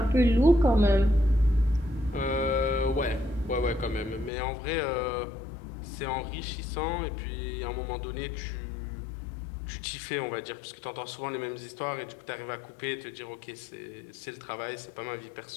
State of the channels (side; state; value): right; drops out; at 4.3 s